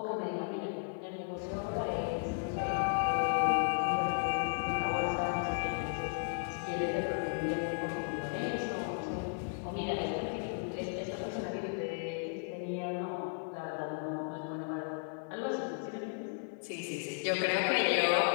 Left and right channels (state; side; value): silent; right; digital silence